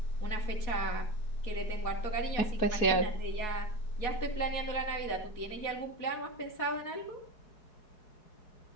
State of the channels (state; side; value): late; right; 4.7 ms